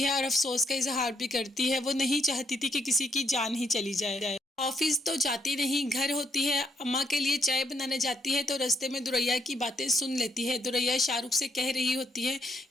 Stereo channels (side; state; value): both; normal; correlation 0.73